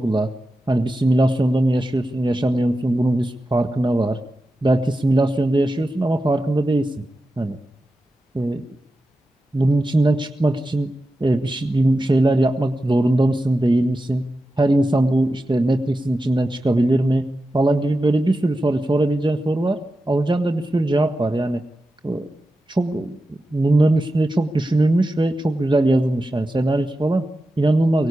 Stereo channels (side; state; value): both; normal; correlation 0.92